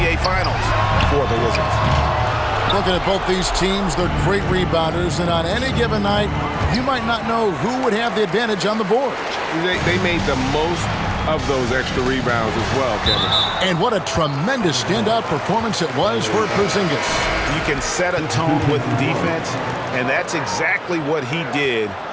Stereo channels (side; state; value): both; identical; correlation 1.00